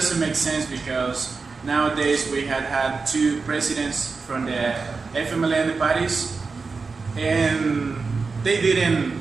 make sense because nowadays we had two presidents from the FMLN parties, and they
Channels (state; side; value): quieter; left; 4.5 dB